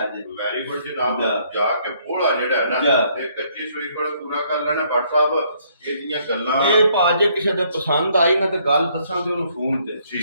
ਜੇ ਵੈਰੀ ਗੁੱਡ ਜਨਾਬ ਜਾ। ਜਾ ਕੇ ਬੋਲਾ ਜਿਹੜਾ ਹੈ ਨਾ ਜਾ। ਇਹ ਕੱਚੀ ਸੂਈ ਕੋਲ ਪੂਰਾ ਕਰ ਲੈਣਾ ਭੱਟ ਸਾਹਿਬ ਇਹਦੀਆਂ ਗੱਲਾਂ ਇਹ ਭਾਜੇ ਕਿਸੇ ਦੇ ਪਸੰਦ ਆਈ ਨਾ ਤੇ ਗੱਲ ਦੱਸਾਂ ਤੇ ਉਹਨੂੰ ਫੋਨ ਤੇ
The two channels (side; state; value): both; inverted; correlation -0.67